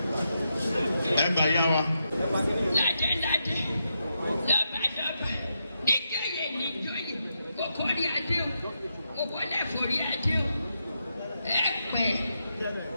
Ẹgbẹ́ yá wa. Ládé lọ́ba nígbàyè níjọ́yè kókó rí adé o kókó lẹ́fọ̀ rí adé o ẹ pẹ́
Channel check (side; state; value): both; inverted; correlation -0.84